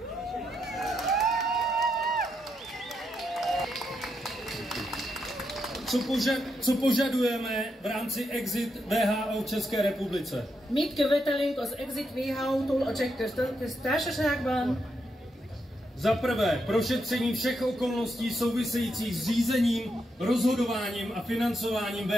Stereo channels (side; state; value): both; normal; correlation 0.82